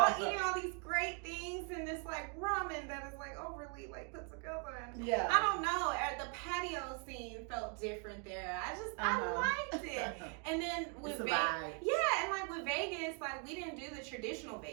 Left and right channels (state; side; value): quieter; left; 37.9 dB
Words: eating all these great things and this like ramen that is like overly like put together. And Yeah. I don't know. The patio scene felt different there. I liked it. And then with Vegas, and like with Vegas, like we didn't do the traditional